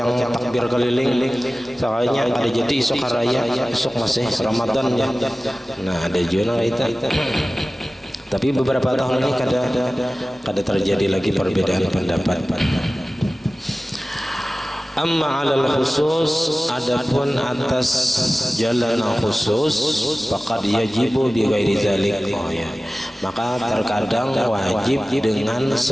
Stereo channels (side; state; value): both; normal; correlation 0.97